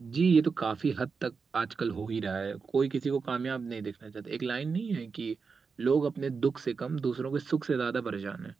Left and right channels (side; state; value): left; quieter; 5.1 dB